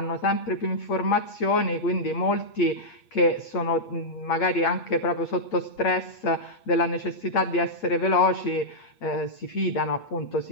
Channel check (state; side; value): late; right; 8.4 ms